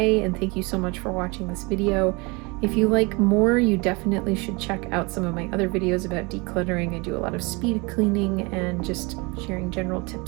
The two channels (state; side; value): quieter; left; 27.5 dB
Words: and thank you so much for watching this video. If you like more, you definitely should check out some of my other videos about decluttering. I do a lot of speed cleaning and just sharing general